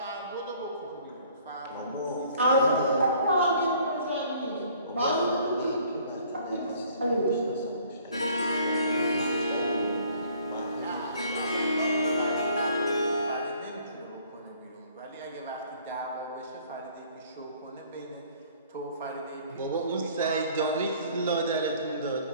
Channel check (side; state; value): both; inverted; correlation -0.57